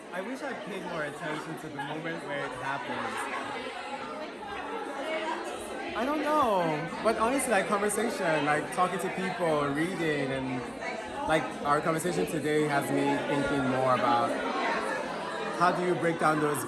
I wish I paid more attention to the moment where it happens. I don't know, but honestly, conversation, talking to people, reading, and our conversation today has me thinking more about how do you break down those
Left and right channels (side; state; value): both; identical; correlation 1.00